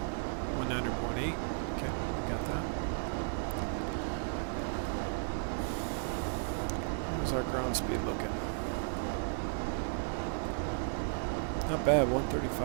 ground speed looking? Not bad,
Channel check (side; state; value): left; silent; digital silence